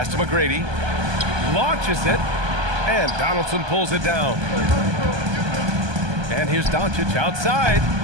to McGrady. Launches it. And Donaldson pulls it down. And here's Doncic outside.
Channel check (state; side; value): late; left; 1.2 ms